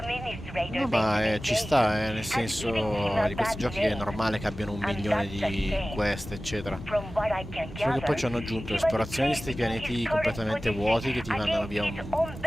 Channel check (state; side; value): normal; both; correlation 0.97